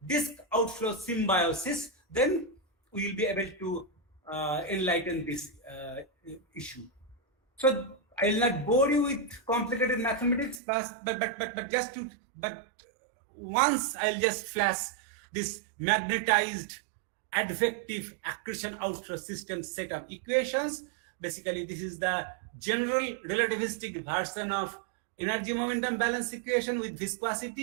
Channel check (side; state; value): left; drops out; at 10.6 s